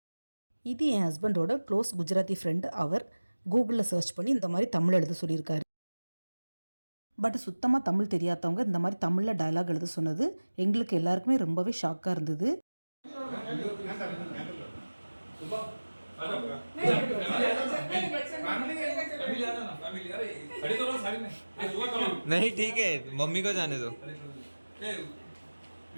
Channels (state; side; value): inverted; both; correlation -1.00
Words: இது என் ஹஸ்பண்டோட க்ளோஸ் குஜராத்தி ஃப்ரெண்டு. அவர் கூகுளில் சர்ச் பண்ணி இந்த மாதிரி தமிழ் எழுத சொல்லியிருக்காரு. பட் சுத்தமாக தமிழ் தெரியாதவங்க இந்த மாதிரி தமிழில் டயலாக் எழுத சொன்னது எங்களுக்கு எல்லாருக்குமே ரொம்பவே ஷாக்காக இருந்தது. नहीं ठीक है, मम्मी को जाने दो.